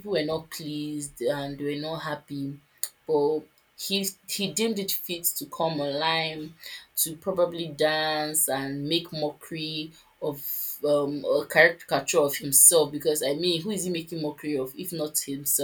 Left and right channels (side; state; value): both; identical; correlation 1.00